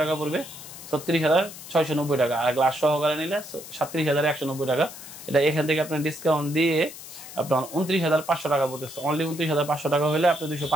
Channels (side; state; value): left; noise; hiss, 14 dB below the sound